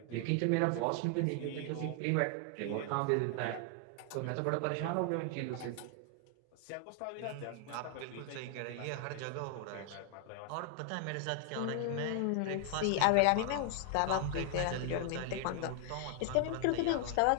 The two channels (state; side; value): different; both; correlation 0.00